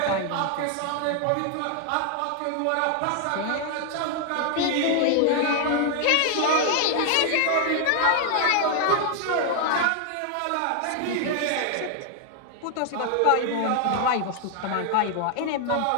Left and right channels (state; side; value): different; both; correlation 0.00